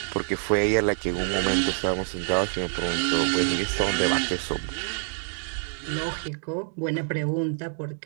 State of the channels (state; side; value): silent; left; digital silence